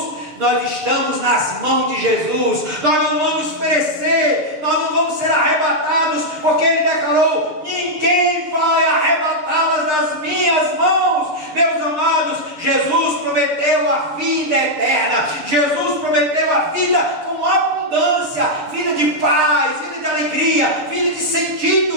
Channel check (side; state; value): left; late; 6.9 ms